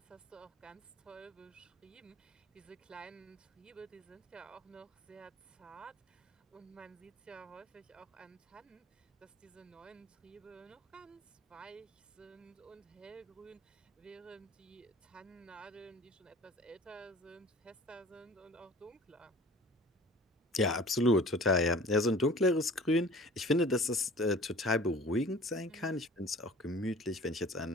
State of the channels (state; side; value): normal; both; correlation 0.45